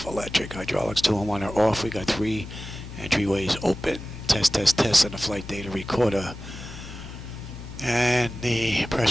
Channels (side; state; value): left; noise; hum, 13 dB below the sound